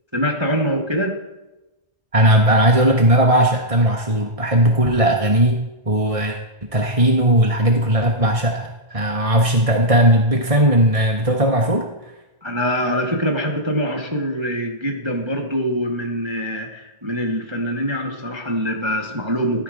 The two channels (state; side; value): late; left; 1.6 ms